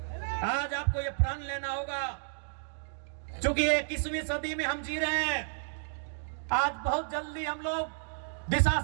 आज आपको ये प्रण लेना होगा, क्योंकि 21वीं सदी में हम जी रहे हैं। आज बहुत जल्दी हम लोग दिशा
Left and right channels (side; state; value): left; silent; digital silence